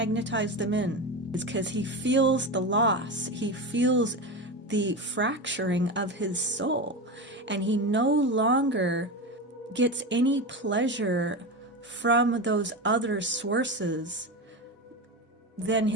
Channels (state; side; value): normal; both; correlation 0.21